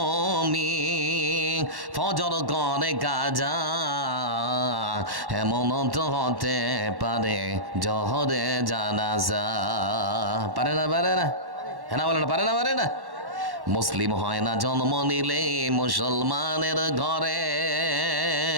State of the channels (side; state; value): left; late; 1.1 ms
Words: ফজর করে কাজা, এমন তো হতে পারে জহরে জানাজা। পারে না পারে না, হ্যাঁ বলে না, পারে না পারে না। মুসলিম হয় না জন্ম নিলে মুসলমানের ঘরে,